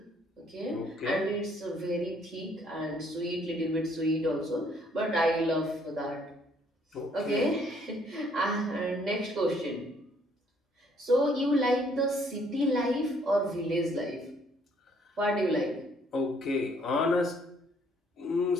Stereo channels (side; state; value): both; normal; correlation 0.65